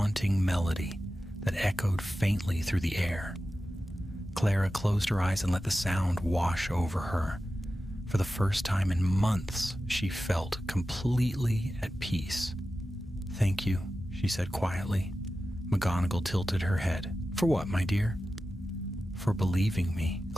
melody that echoed faintly through the air. Clara closed her eyes and let the sound wash over her. For the first time in months, she felt completely at peace. Thank you, she said quietly. McGonagall tilted her head. For what, my dear? For believing me,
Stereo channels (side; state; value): both; normal; correlation 0.93